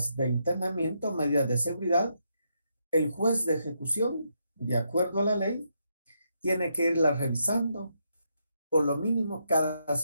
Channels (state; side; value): inverted; both; correlation -0.80